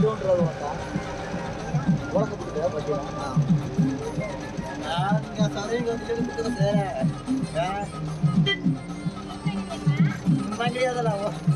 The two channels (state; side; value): identical; both; correlation 1.00